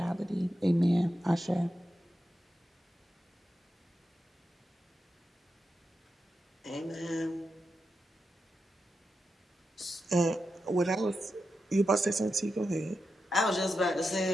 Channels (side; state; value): both; normal; correlation 0.88